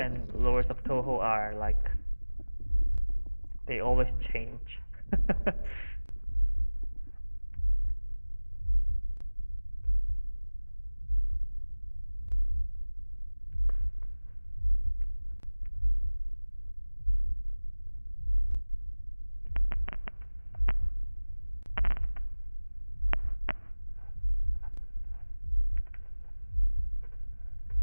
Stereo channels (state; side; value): inverted; both; correlation -1.00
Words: lures of Touhou are like they always change.